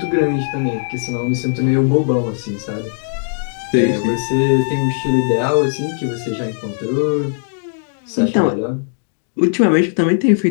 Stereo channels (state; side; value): silent; right; digital silence